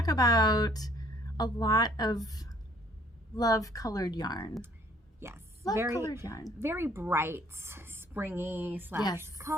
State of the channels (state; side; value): normal; both; correlation 0.60